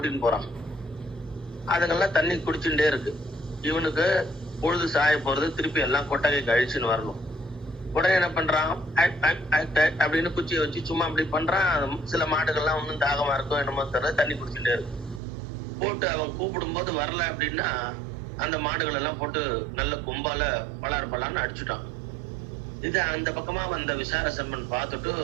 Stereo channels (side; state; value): left; drops out; at 15.2 s